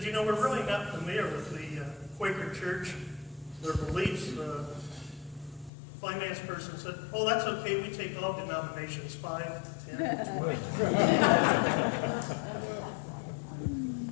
you know, we're really not familiar with the Quaker Church, their beliefs. The finance person said, oh, that's okay, we take all denominations, 5, 10, 20.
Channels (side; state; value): right; drops out; at 5.7 s